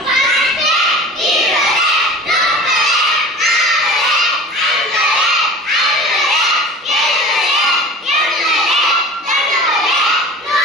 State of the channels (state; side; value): normal; both; correlation 0.39